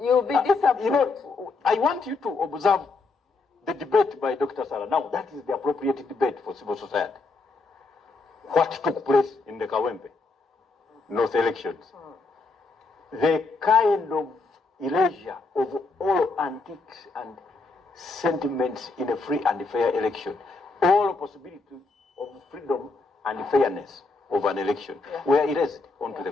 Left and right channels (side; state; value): right; quieter; 3.7 dB